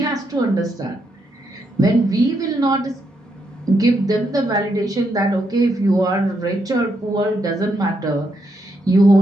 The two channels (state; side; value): normal; both; correlation 0.79